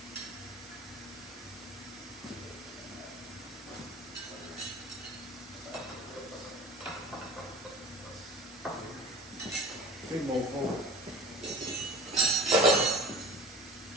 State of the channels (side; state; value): both; normal; correlation 0.39